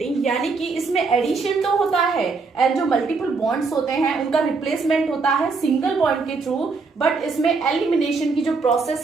यानी कि इसमें एडिशन तो होता है एंड जो मल्टीपल बॉन्ड्स होते हैं उनका रिप्लेसमेंट होता है सिंगल बॉन्ड के थ्रू, बट इसमें एलिमिनेशन की जो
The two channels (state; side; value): quieter; left; 4.3 dB